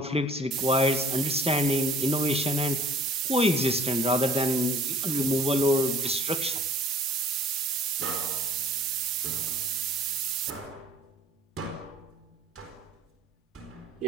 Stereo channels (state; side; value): normal; both; correlation 0.51